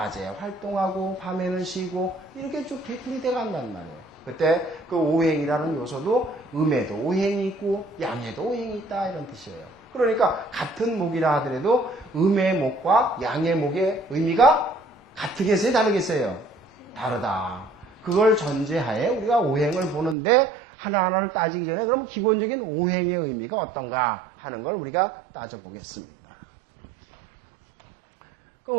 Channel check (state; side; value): drops out; left; at 20.2 s